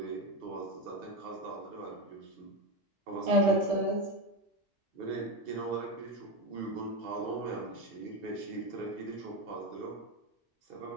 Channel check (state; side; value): normal; both; correlation 0.16